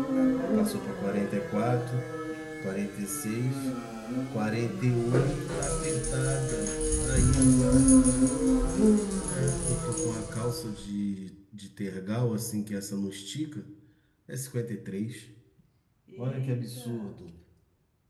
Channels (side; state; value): both; identical; correlation 1.00